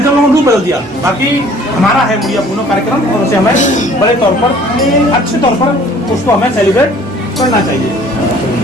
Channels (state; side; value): normal; both; correlation 0.54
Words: थे उन्होंने रूप बदल दिया। बाकी हमारा है मुड़िया पुनः कार्यक्रम और उसे हमें बड़े तौर पर, अच्छे तौर पर उसको हमें सेलिब्रेट करना चाहिए।